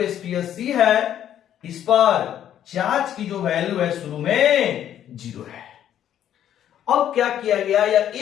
स्फीयर C है इस पर चार्ज की जो वैल्यू है शुरू में 0 है। अब क्या किया गया, या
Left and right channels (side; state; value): right; quieter; 10.6 dB